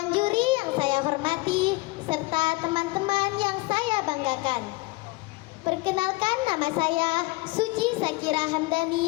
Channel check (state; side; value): quieter; right; 23.1 dB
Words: juri yang saya hormati, serta teman-teman yang saya banggakan. Perkenalkan, nama saya Suci Sakira